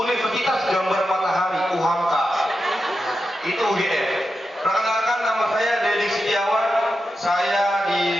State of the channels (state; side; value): normal; both; correlation 0.89